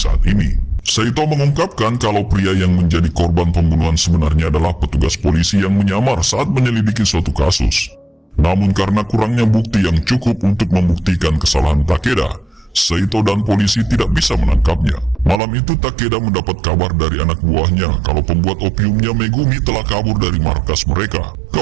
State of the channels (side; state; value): left; drops out; at 15.4 s